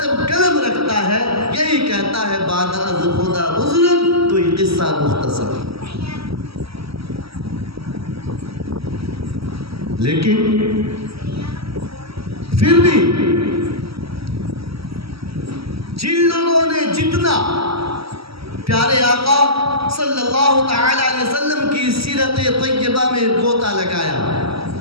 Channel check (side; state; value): left; late; 0.76 ms